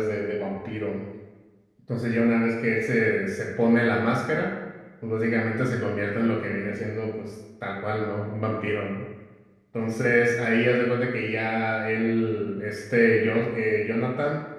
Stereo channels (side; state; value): both; identical; correlation 1.00